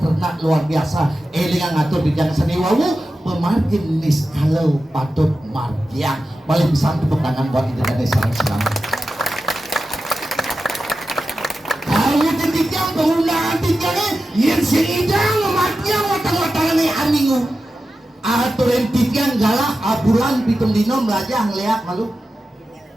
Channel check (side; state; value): both; normal; correlation 0.92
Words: luar biasa elingan ngatur di jangan seni wawu pemargin niskalo patut margiang paling bisa tepuk tangan buat Indonesia sarang sinami. Kalau ketika penggunaan tinggalnya yang singidang margiang watang-watangan ini amingu aturin tigang galah abulan pitung dino melajah ngeliat malu